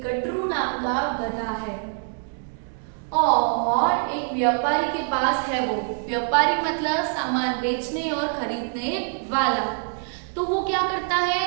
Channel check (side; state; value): left; silent; 59 dB below the other